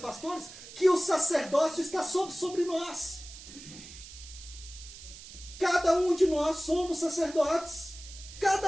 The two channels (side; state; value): right; noise; hiss, 15 dB below the sound